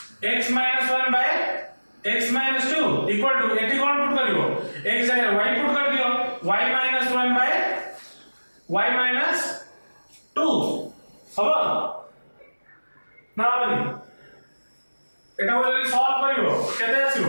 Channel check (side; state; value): both; inverted; correlation -1.00